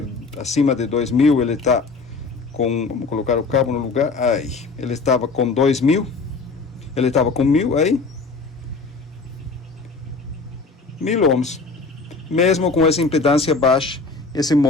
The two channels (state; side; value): quieter; right; 4.1 dB